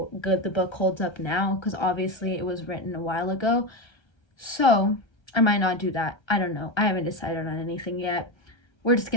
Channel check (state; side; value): late; right; 1.3 ms